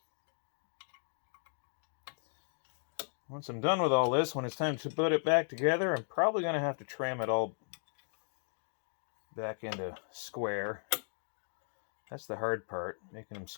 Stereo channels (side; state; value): right; silent; digital silence